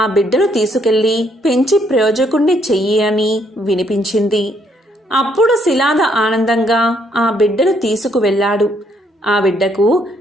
బిడ్డను తీసుకెళ్లి పెంచి ప్రయోజకుణ్ణి చెయ్యి అని వినిపించింది. అప్పుడు శిలాద ఆనందంగా ఆ బిడ్డను తీసుకువెళ్ళాడు. ఆ బిడ్డకు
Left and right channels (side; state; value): both; normal; correlation 0.70